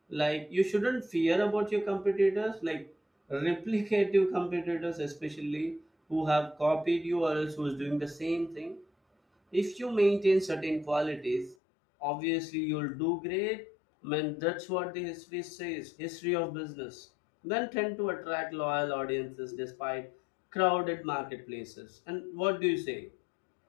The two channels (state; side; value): drops out; right; at 11.6 s